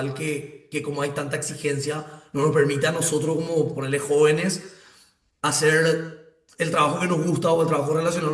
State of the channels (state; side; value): identical; both; correlation 1.00